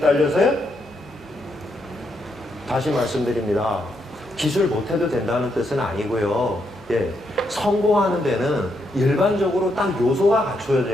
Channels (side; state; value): both; normal; correlation 0.79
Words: 다시 말씀드립니다. 기술 못해도 된다는 뜻은 아니고요. 예, 성공하는 데는 일반적으로 딱 요소가